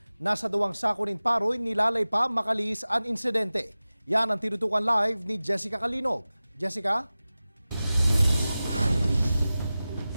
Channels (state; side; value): inverted; both; correlation -0.96